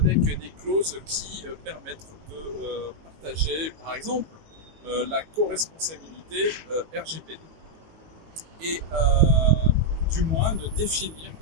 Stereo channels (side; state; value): left; late; 19 ms